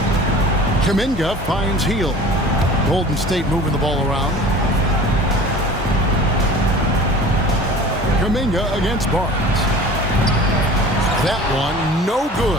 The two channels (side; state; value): both; normal; correlation 0.42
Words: Kuminga finds Hield. Golden State moving the ball around. Kuminga against Barnes. That one, no